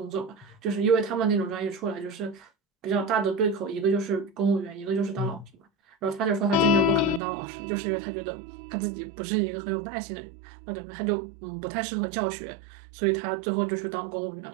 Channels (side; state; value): left; drops out; at 7.2 s